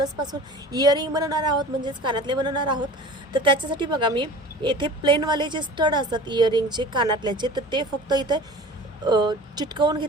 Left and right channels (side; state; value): both; normal; correlation 0.40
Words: पासून इयरिंग बनवणार आहोत, म्हणजेच कानातले बनवणार आहोत। तर त्याच्यासाठी बघा मी येथे प्लेन वाले जे स्टड असतात इयरिंगचे कानातल्याचे, तर ते फक्त इथे चिटकवून